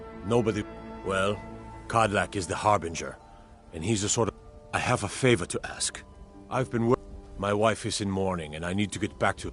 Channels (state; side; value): identical; both; correlation 1.00